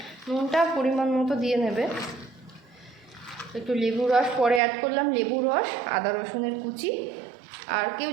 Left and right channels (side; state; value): left; drops out; at 4.6 s